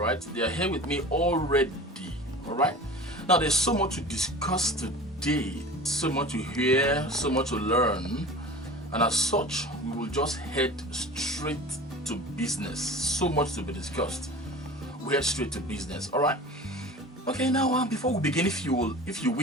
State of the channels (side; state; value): both; normal; correlation 0.38